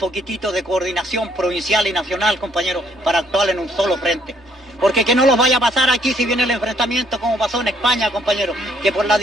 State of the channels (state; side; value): normal; both; correlation 0.67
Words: de coordinación provincial y nacional, compañero, para actuar en un solo frente. Porque que no los vaya a pasar aquí si viene el enfrentamiento como pasó en España, compañero, que por la